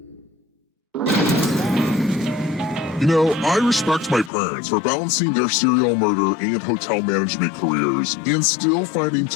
You know, I respect my parents for balancing their serial murder and hotel management careers and still finding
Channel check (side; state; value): right; drops out; at 4.3 s